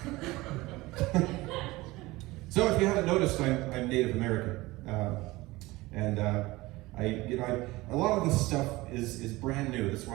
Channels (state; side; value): quieter; left; 20.3 dB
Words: So if you haven't noticed, I'm Native American, and a lot of this stuff is brand new. That's why